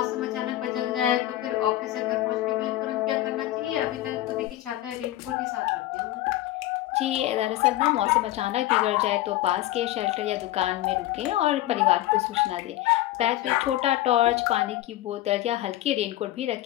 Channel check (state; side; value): quieter; right; 15.4 dB